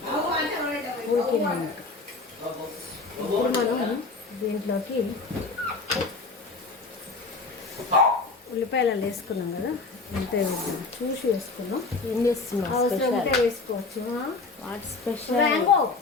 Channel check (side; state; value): right; quieter; 3.8 dB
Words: ఉడికినాక ఇప్పుడు మనం దీంట్లోకి ఉల్లిపాయలు వేసుకున్నాం కదా, అంతే చూసి వేసుకున్నాం. ఏం చేస్తున్నాం? అవసరం ఉంటే వేసుకోవచ్చు. What special?